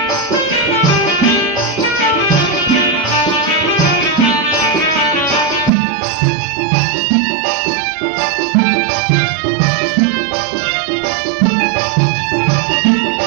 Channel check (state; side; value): drops out; left; at 5.7 s